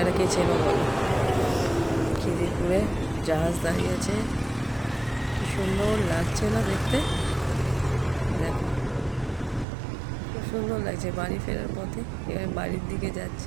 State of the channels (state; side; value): drops out; left; at 9.7 s